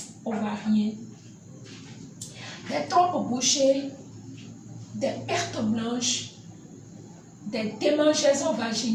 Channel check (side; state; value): both; identical; correlation 1.00